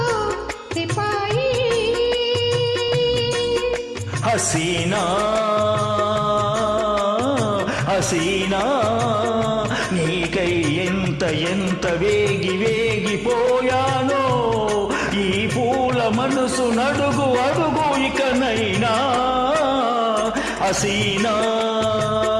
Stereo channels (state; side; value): identical; both; correlation 1.00